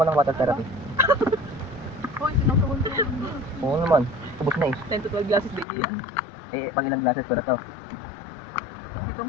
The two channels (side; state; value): right; drops out; at 5.7 s